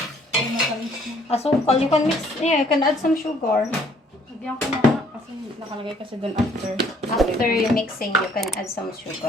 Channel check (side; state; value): both; normal; correlation 0.61